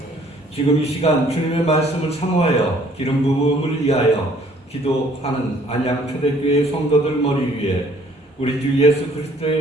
지금 이 시간 주님의 말씀을 사모하여 기름 부음을 위하여 기도하는 안양 초대교회 성도들 머리 위에 우리 주 예수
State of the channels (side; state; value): both; normal; correlation 0.59